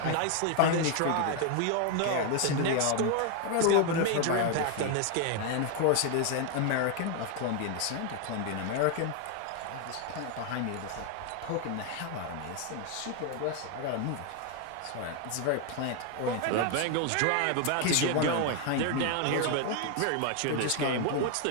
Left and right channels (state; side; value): different; both; correlation 0.01